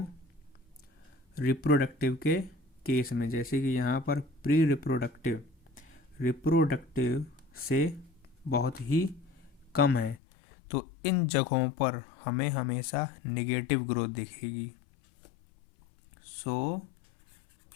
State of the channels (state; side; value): drops out; right; at 10.2 s